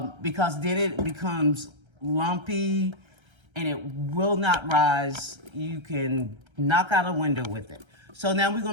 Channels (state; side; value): late; left; 1.3 ms